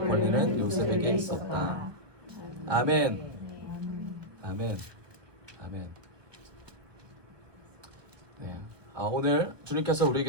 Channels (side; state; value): left; late; 1.1 ms